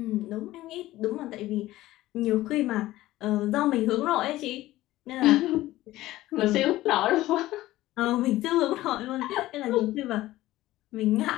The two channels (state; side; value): quieter; right; 16.3 dB